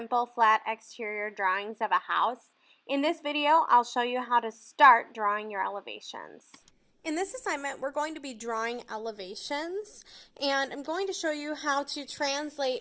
flat exterior drawings of a house. In this video, I'll show you how to start drawing your elevations. In this assignment, we're going to be drawing elevations, and I'm going to show you how to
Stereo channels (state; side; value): identical; both; correlation 1.00